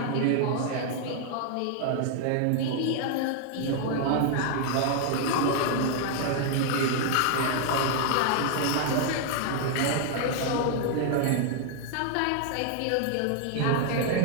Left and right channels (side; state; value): both; different; correlation 0.00